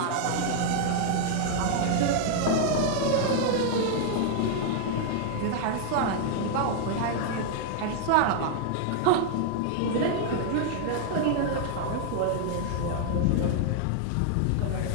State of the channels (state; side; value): different; both; correlation 0.00